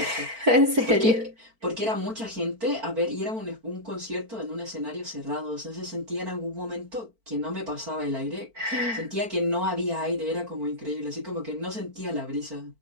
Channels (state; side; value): late; left; 4.4 ms